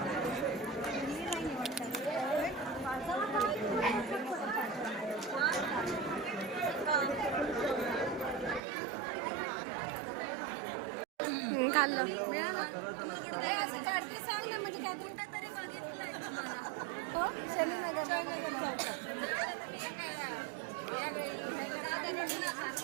खाल्लं. मिळाला तुम्हाला कुठं तरी काढते सांग ना. म्हणजे काय कुठं तरी बघितलंय तुम्हाला. हो शनीनगर चौकात.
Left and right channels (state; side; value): drops out; left; at 8.6 s